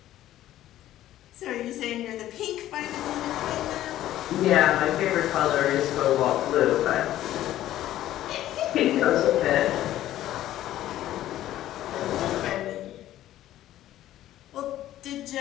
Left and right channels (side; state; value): right; quieter; 13.4 dB